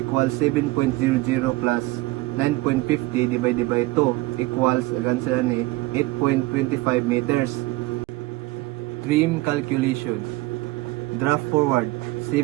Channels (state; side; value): quieter; left; 19.8 dB